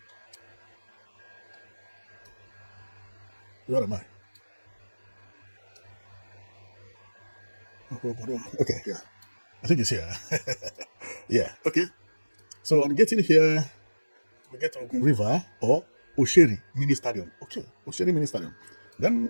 Where am I? Okay, yeah. I think it's here. Yeah, okay. So on getting here, we get to Ogun River or Osheri Mini Stadium. Okay, Osheri Mini Stadium.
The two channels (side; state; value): both; inverted; correlation -1.00